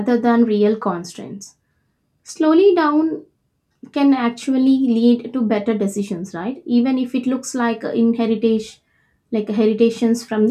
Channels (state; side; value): identical; both; correlation 1.00